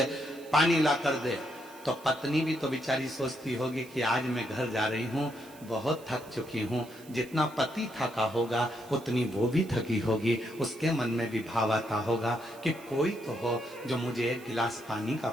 पानी ला कर दे। तो पत्नी भी तो बेचारी सोचती होगी कि आज मैं घर जा रही हूं, बहुत थक चुकी हूं। जितना पति थका होगा उतनी वो भी थकी होगी। उसके मन में भी भाव आता होगा कि कोई तो हो जो मुझे 1 गिलास पानी का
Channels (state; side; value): noise; right; hiss, 22 dB below the sound